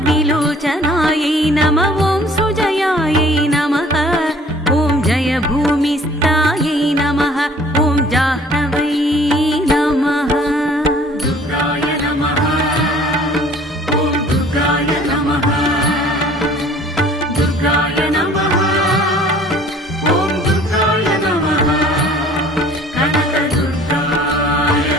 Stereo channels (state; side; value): normal; both; correlation 0.53